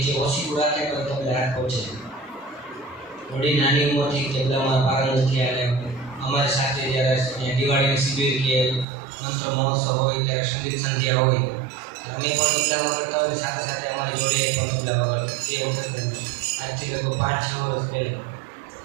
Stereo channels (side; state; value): left; drops out; at 8.8 s